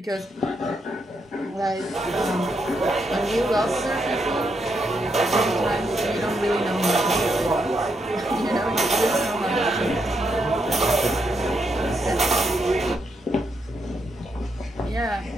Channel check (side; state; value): both; normal; correlation 0.80